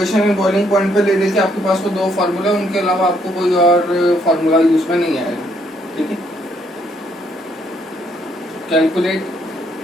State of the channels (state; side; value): normal; both; correlation 0.70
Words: एंड बॉइलिंग पॉइंट पे ले लेके आपके पास वो दो फार्मूला, उनके अलावा आपको कोई और फार्मूला यूज में नहीं आएगा। ठीक है, calculate